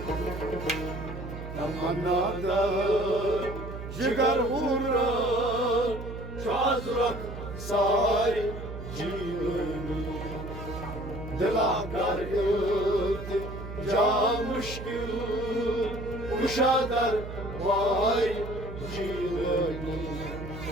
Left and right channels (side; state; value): right; noise; hum, 9 dB below the sound